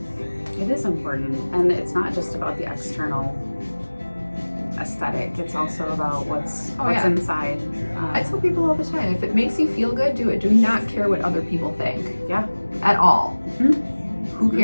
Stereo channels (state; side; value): inverted; both; correlation -1.00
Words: It is important, and it's not just about the external aesthetic. It's also about what's inside. I tell people all the time, if it makes you feel good, do it. Do not care what other people think. Yeah. At all. Mm-hmm. Who